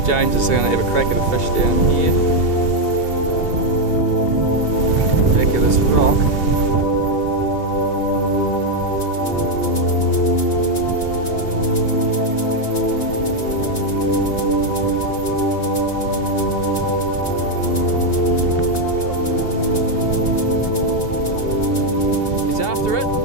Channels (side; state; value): right; late; 2.9 ms